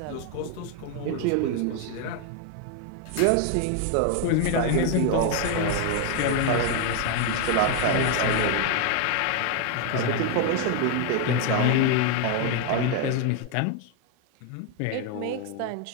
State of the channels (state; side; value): different; both; correlation 0.01